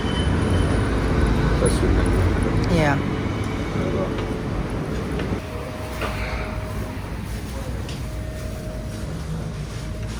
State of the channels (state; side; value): identical; both; correlation 1.00